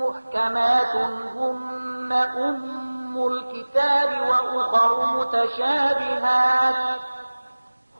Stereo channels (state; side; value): inverted; both; correlation -1.00